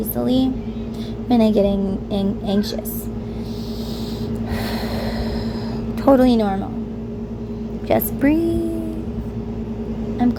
when I get anxious. Totally normal. Just breathe. I'm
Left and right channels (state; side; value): identical; both; correlation 1.00